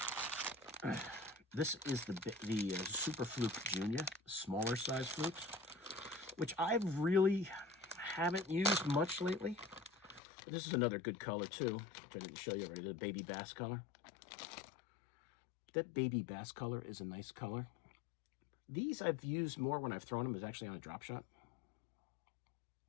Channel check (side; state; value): right; drops out; at 10.2 s